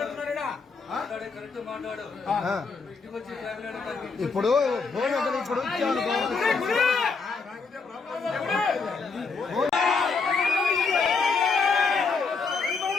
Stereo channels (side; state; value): right; quieter; 4.7 dB